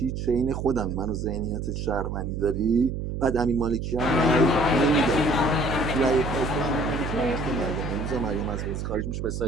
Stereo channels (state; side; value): noise; right; hum, 4 dB below the sound